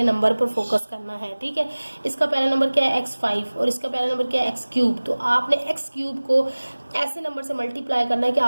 नंबर पर फोकस करना है। ठीक है, इसका पहला नंबर क्या है x5 और इसका पहला नंबर क्या है x³, तो आपने x³ को ऐसे नंबर से मल्टीप्लाई करना है कि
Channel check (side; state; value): both; inverted; correlation -1.00